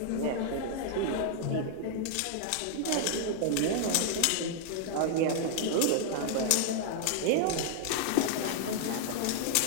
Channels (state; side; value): different; both; correlation 0.00